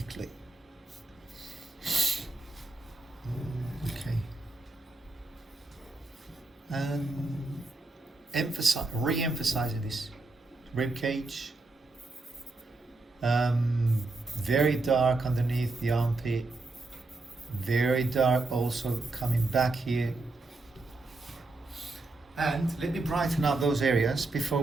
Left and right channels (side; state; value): left; quieter; 3.3 dB